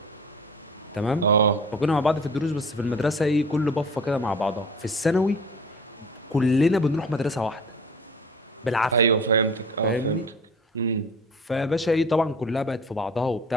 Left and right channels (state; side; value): normal; both; correlation 0.43